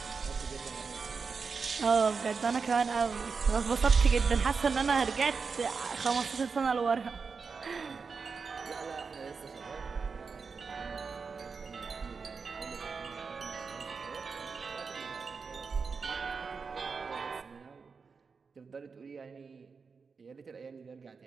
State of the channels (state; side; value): quieter; left; 5.1 dB